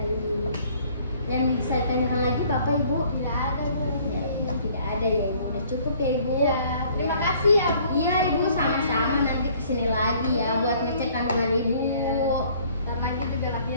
Yang bisa ditanyakan lagi Bapak Ibu? Tidak ada Bu. Ya, tidak ada ya Ibu. Udah cukup ya Ibu. Ya, terima kasih ya Bu. Iya Ibu, sama-sama, nanti kesini lagi ya buat ngecek kandungan Ibu. Ntar lagi juga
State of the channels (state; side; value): inverted; both; correlation -0.58